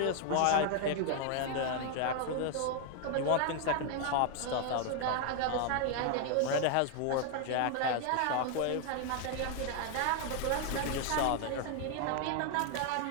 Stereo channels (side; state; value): both; different; correlation 0.00